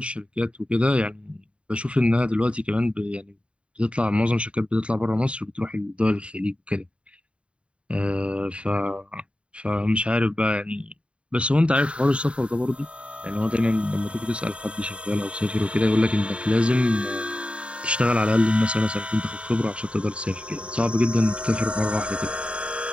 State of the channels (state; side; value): late; left; 0.059 ms